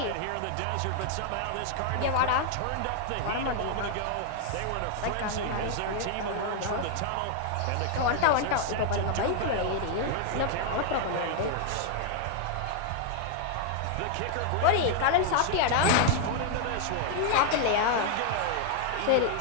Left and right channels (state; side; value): different; both; correlation 0.00